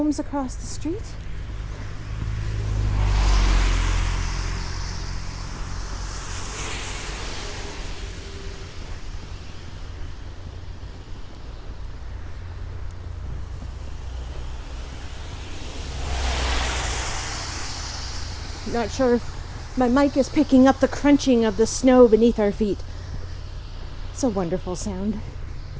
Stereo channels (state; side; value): identical; both; correlation 1.00